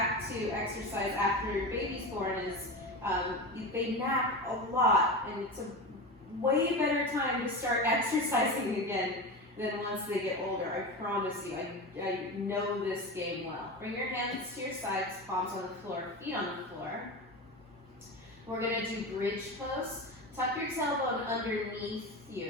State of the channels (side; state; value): both; normal; correlation 0.24